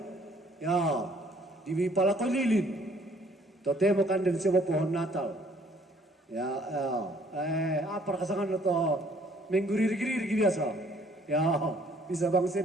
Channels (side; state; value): both; normal; correlation 0.61